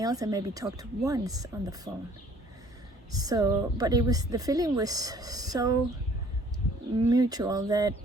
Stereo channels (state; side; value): normal; both; correlation 0.56